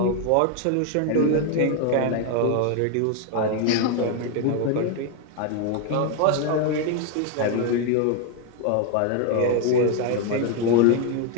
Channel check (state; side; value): different; both; correlation 0.01